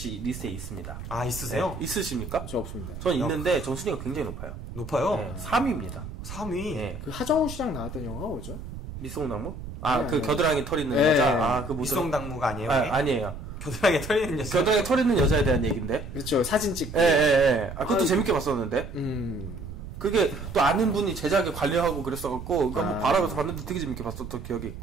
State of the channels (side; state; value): right; noise; rumble, 10 dB below the sound